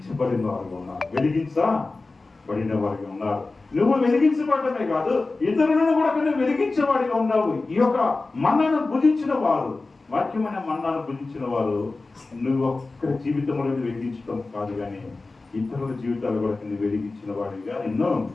వారుగా ఉన్నారు, వెలిగించబడిన వారిగా ఉన్నారు. నువ్వు వెలిగించబడటమే కాదు, ఇతరులను కూడా నువ్వు వెలిగించేవాడిగా ఉన్నావు. ఈ యొక్క మన్నాను భుజించిన వారు, వాక్యమైన మన్నాను భుజించిన వారు నువ్వు ఒక్క జీవితంలో వెలిగించడం కాదు, కానీ ఇతరుల జీవితాలు కూడా నువ్వు వెలిగించిన వాడిగా ఎన్నో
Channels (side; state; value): right; quieter; 3.5 dB